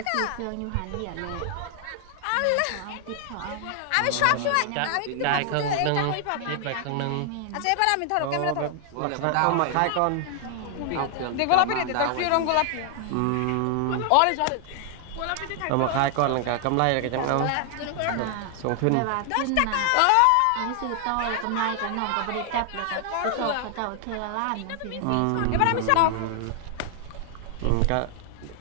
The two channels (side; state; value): both; different; correlation 0.00